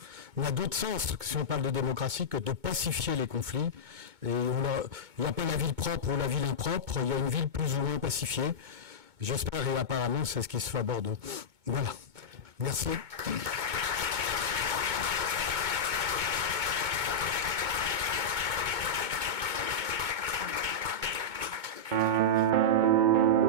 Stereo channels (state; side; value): late; left; 2.2 ms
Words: on a d'autres sens, si on parle de démocratie, que de pacifier les conflits. Et il n'y a pas la ville propre ou la ville impropre, il y a une ville plus ou moins pacifiée. J'espère, et apparemment, c'est ce qui se fait à Bordeaux. Voilà. Merci.